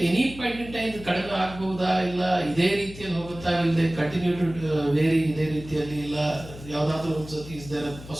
any point in time ಕಡಿಮೆ ಆಗ್ಬಹುದಾ, ಇಲ್ಲ ಇದೇ ರೀತಿಯಲ್ಲಿ ಹೋಗುತ್ತಾ, ಇಲ್ಲದೆ ಕಂಟಿನ್ಯೂ ಟು ವೇರಿ ಇದೇ ರೀತಿಯಲ್ಲಿ, ಇಲ್ಲ ಯಾವುದಾದ್ರೂ ಒಂದ್ಸತಿ is there a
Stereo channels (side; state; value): left; noise; hum, 15 dB below the sound